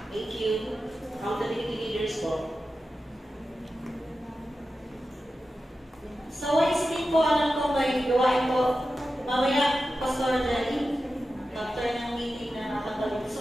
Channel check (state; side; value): normal; both; correlation 0.92